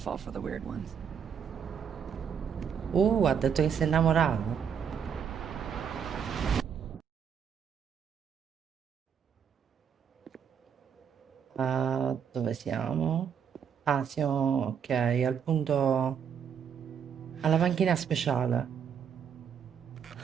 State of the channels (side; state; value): left; quieter; 7.4 dB